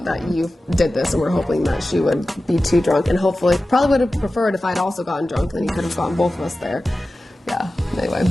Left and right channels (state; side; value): normal; both; correlation 0.95